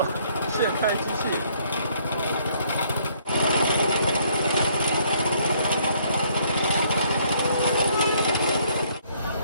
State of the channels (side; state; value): both; inverted; correlation -0.65